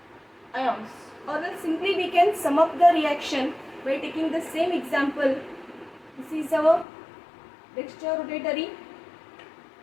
ions. Or else simply we can sum up the reaction by taking the same example. This is our dextrorotatory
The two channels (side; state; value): right; drops out; at 6.9 s